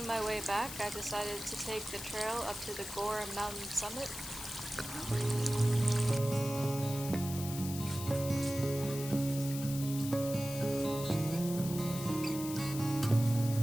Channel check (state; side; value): noise; left; hiss, 9 dB below the sound